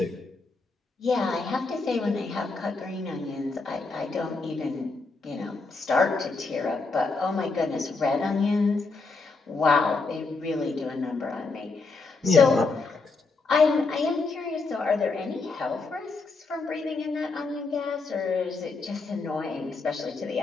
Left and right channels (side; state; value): right; quieter; 3.9 dB